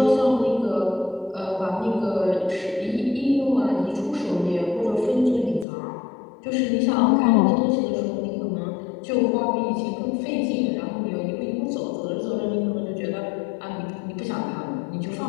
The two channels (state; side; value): drops out; right; at 5.7 s